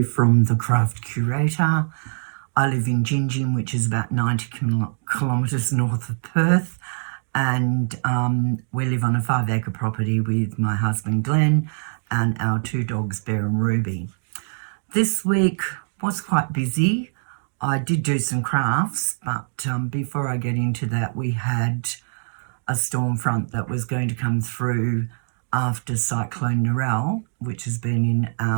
from The Craft Curator. I live in Gingin, which is about 90 kilometres north of Perth, and we live on a 5-acre property with my husband Glenn and our 2 dogs Bear and Ruby. This week was quite busy. I did do some crafts, but before I get into that, we had a storm front that was going to come through after Cyclone Narelle, which has been in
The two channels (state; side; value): silent; left; digital silence